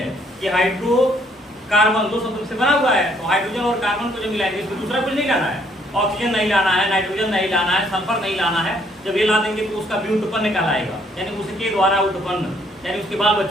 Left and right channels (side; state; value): both; normal; correlation 0.66